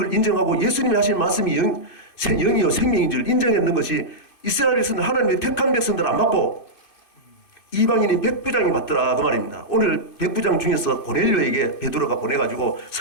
인정하고 예수님이 하신 말씀이 영이요 생명인 줄 인정했는 것이 이스라엘 백성들 하나님의 택한 백성들 안 받고 이방인인 백부장이 맞더라 그 말입니다. 오늘 백부장 중에서 고넬료에게 베드로가 보내가지고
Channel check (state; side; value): late; right; 2.5 ms